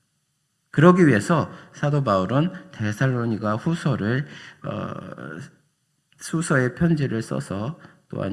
그러기 위해서 사도 바울은 데살로니가 수서의 편지를 써서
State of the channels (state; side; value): identical; both; correlation 1.00